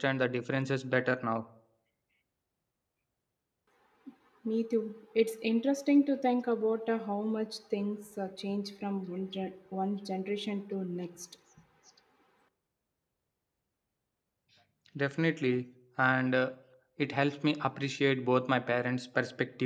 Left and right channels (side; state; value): both; identical; correlation 1.00